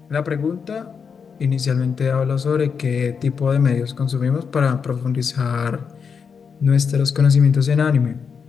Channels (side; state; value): right; quieter; 6.2 dB